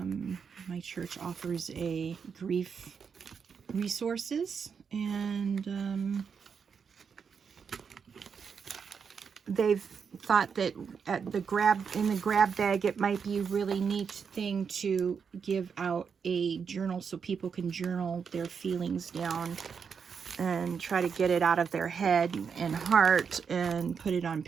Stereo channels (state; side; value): quieter; left; 6.4 dB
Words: church offers a grief resources, and they've thought that at in the grab bag, it might be a really neat thing to give out a journal so people can journal their feelings down and try to get it out of their head and heart and put it on